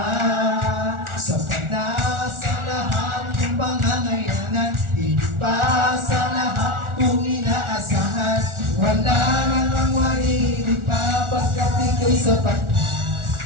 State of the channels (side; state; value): left; late; 1.4 ms